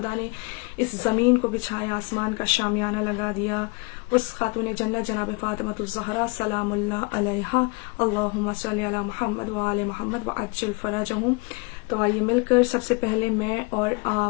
نے اس زمین کو بچھایا، آسمان کا شامیانہ لگا دیا، اس خاتون جنت جناب فاطمۃ الزہرا سلام اللہ علیہا، اللہم صلی علی محمد وآل محمد وعجل فرجہم۔ تو آئیے مل کر سب سے پہلے میں اور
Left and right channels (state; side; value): quieter; right; 29.3 dB